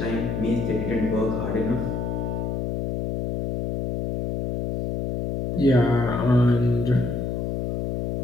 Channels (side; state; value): left; noise; hum, 2 dB below the sound